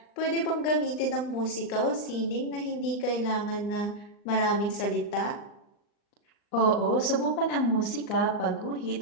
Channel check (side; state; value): right; late; 39 ms